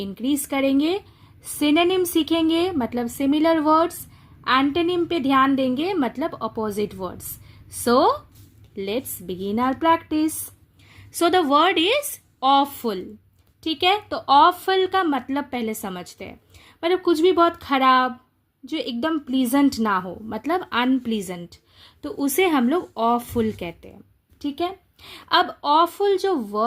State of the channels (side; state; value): both; identical; correlation 1.00